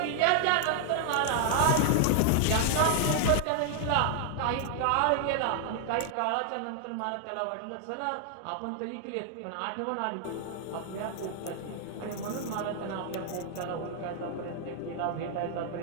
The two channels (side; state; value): both; different; correlation 0.00